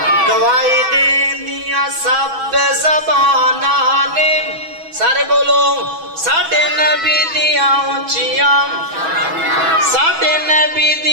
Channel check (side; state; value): left; late; 6.1 ms